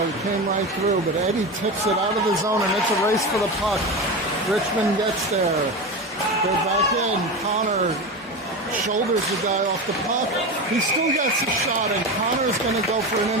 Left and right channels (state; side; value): normal; both; correlation 0.22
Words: came right through, but Eddie tips it out of the zone, and it's a race for the puck. Richmond gets there. They're back in. Connor shoulders the guy off the puck. He still gets a shot, and Connor's going to go for an